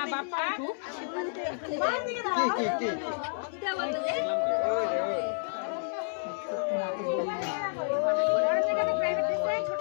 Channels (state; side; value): silent; right; 58 dB below the other